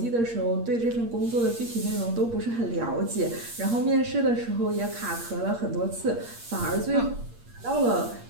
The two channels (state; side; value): late; left; 8.6 ms